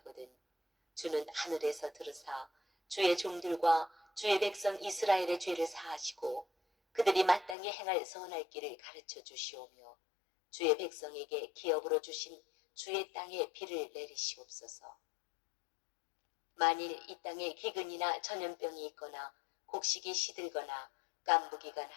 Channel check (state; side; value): drops out; right; at 7.6 s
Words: 주는 하늘에서 들으사 주의 종들과 주의 백성 이스라엘의 죄를 사하시고 그들이 마땅히 행할 선할 길을 가르쳐 주시오며 주의 백성에게 기업으로 주신 주의 땅에 비를 내리시옵소서. 만일 이 땅에 기근이나 전염병이 있거나 곡식이 시들거나 깐부기가